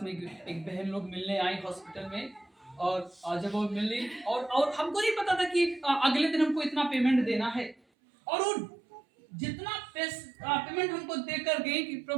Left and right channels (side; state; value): left; drops out; at 7.8 s